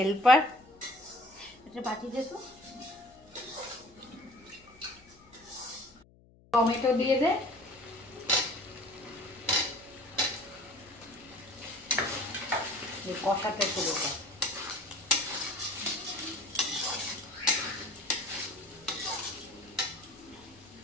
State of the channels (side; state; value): left; noise; hum, 27 dB below the sound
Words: এটা পাঠিয়ে দে তো। টমেটো দিয়ে দে। কষাতে পুরোটা।